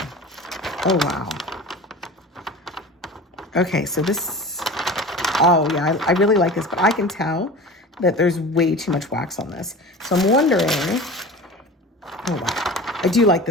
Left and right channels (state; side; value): normal; both; correlation 0.36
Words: Oh, wow. Okay, so this, oh yeah, I really like this, but I can tell that there's way too much wax on this. So I'm wondering, oh wow, I do like